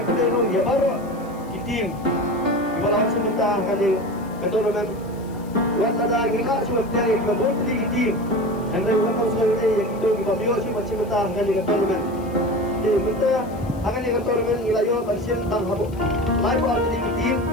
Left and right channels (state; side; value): noise; left; hiss, 25 dB below the sound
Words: ke dalam ya baru kitim ibarat sementara kali keturunan wala da gila sementara yang berbun di kitim dan wala sesuatu yang itu dibawah sementara kali keturunan jadi kita akan keturunan ilayo bersin tang habu mai buat di kitim